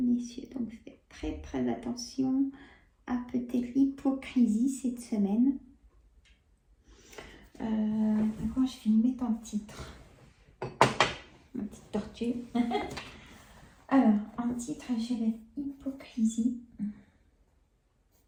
messieurs, donc faites très attention à peut-être l'hypocrisie cette semaine. D'accord, je vais le mettre en titre. Ma petite tortue. Alors, en titre, je vais mettre hypocrisie.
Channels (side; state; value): both; identical; correlation 1.00